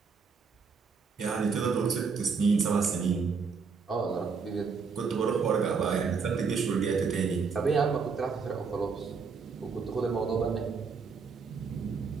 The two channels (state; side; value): quieter; left; 5.3 dB